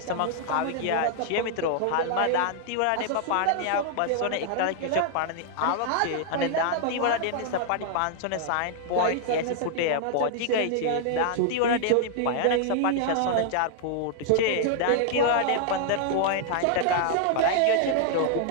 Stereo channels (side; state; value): both; different; correlation -0.01